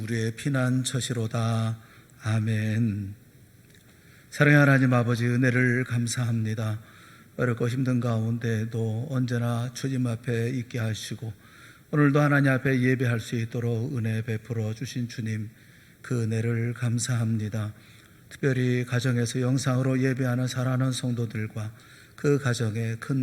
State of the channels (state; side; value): identical; both; correlation 1.00